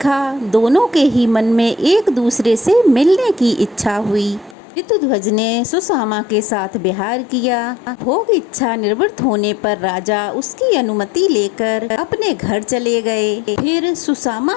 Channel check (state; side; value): drops out; right; at 4.5 s